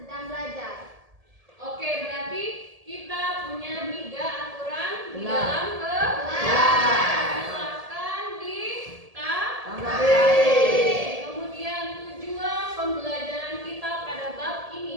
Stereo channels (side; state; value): left; late; 1.7 ms